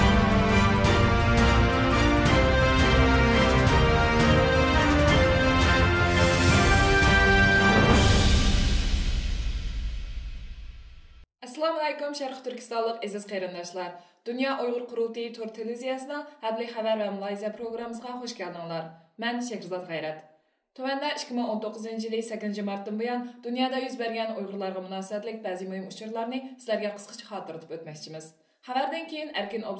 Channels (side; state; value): both; identical; correlation 1.00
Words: alaykum Sharq Turkistonlik aziz qarindoshlar. Dünya Uyghur Qurultayı Tur televiziyasining Habli xabar va Malayziya programmasiga xush keldinglar. Men Shahrizod G'ayrat. Tuvanda 2019-yili 8 martdan buyon dunyoda yuz bergan Uyg'urlarga munosabatlik ba'zi muhim uchurlarni sizlarga qisqacha xotirlatib o'tmoqchimiz. Xabardan keyin erkin